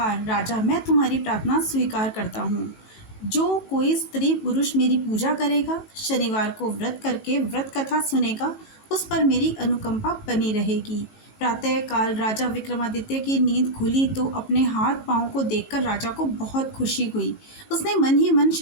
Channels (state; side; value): late; right; 18 ms